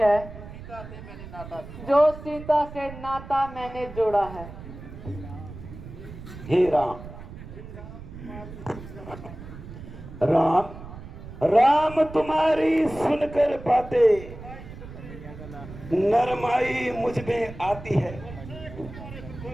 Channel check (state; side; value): noise; right; rumble, 13 dB below the sound